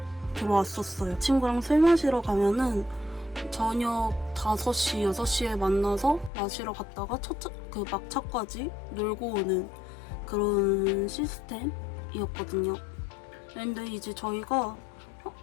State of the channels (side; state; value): right; drops out; at 6.3 s